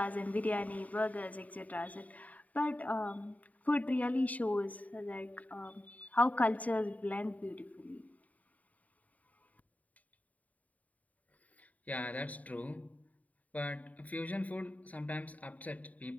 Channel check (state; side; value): late; right; 0.072 ms